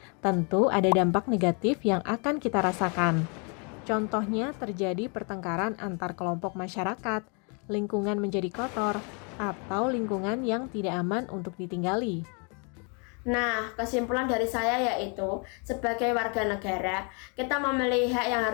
Tentu ada dampak negatif yang akan kita rasakan. Contohnya terjadi pertengkaran antar kelompok masyarakat, lingkungan menjadi kotor, atau lingkungan yang tidak aman untuk ditinggali. Nah, kesimpulan dari saya yaitu, sebagai warga negara, kita memilih hak yang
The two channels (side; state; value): right; quieter; 36.0 dB